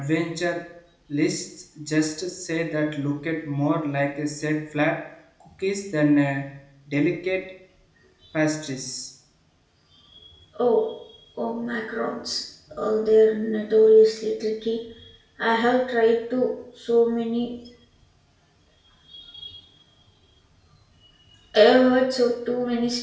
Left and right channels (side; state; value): both; identical; correlation 1.00